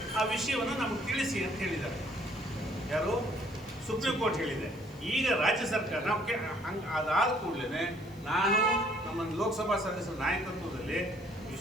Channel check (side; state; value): left; noise; hiss, 27 dB below the sound